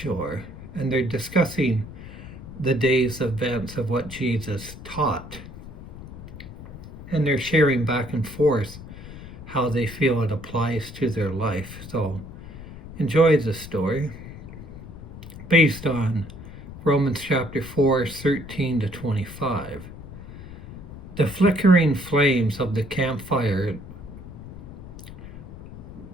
and they're discussing the day's events of what Jesus taught. And they're sharing back and forth how they feel it applies to their life. So enjoy the story based on Romans chapter 4, 13 to 25. The flickering flames of the campfire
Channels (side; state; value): left; noise; rumble, 14 dB below the sound